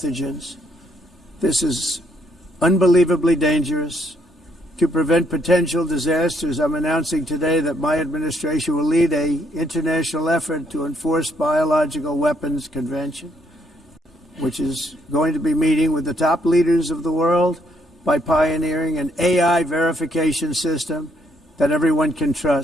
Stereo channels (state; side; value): normal; both; correlation 0.72